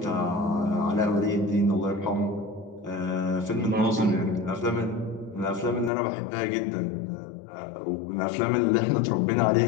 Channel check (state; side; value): drops out; right; at 5.9 s